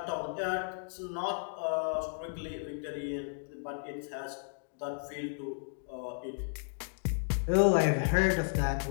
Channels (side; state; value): right; silent; digital silence